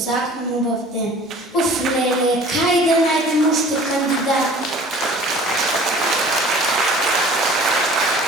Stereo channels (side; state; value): both; normal; correlation 0.47